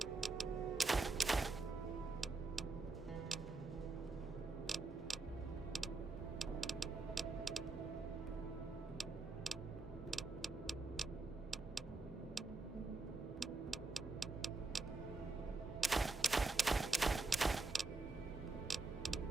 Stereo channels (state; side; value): quieter; left; 3.5 dB